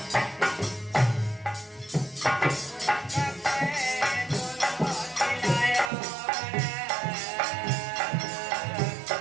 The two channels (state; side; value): drops out; left; at 5.9 s